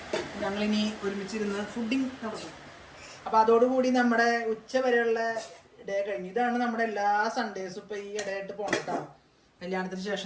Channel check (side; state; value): both; identical; correlation 1.00